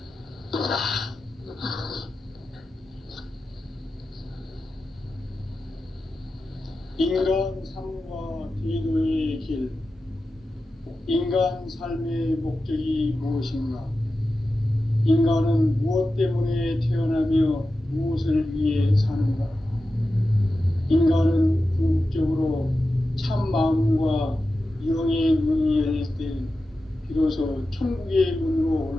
인간 삶과 기도의 길. 인간 삶의 목적이 무엇인가? 인간은 무엇 때문에 태어나며 무엇을 위해 사는가? 인간은 궁극적으로 참 마음과 영의 문이 열릴 때 비로소 천국의 문으로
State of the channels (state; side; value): normal; both; correlation 0.92